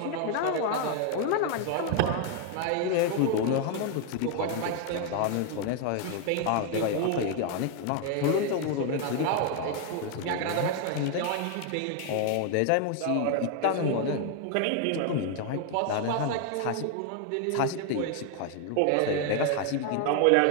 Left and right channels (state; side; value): different; both; correlation 0.00